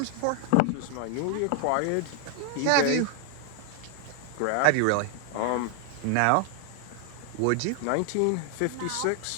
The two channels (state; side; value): different; both; correlation 0.00